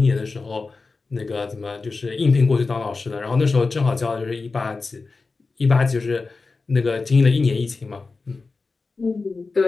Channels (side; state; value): right; quieter; 4.0 dB